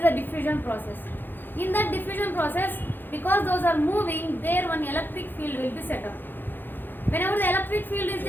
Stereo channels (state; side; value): late; right; 0.094 ms